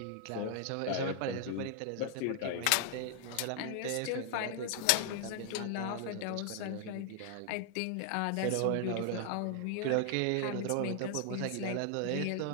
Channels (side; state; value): both; different; correlation 0.00